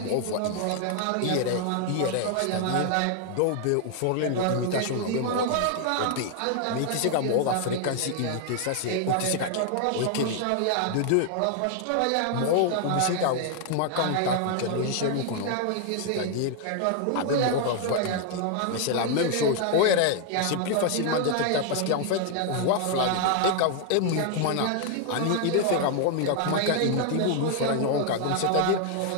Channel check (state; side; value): different; both; correlation 0.00